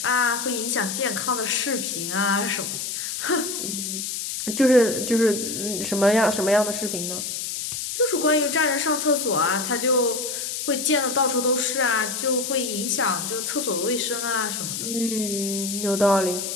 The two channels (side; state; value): left; noise; hiss, 4 dB below the sound